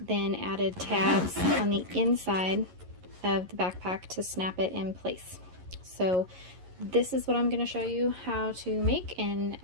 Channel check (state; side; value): late; left; 11 ms